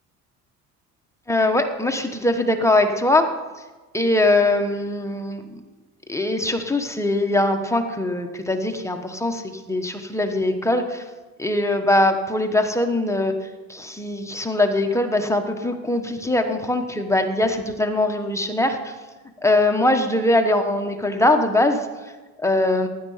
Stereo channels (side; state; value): both; normal; correlation 0.59